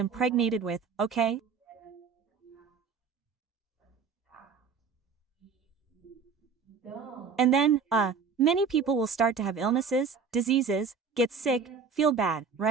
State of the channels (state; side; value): quieter; left; 5.6 dB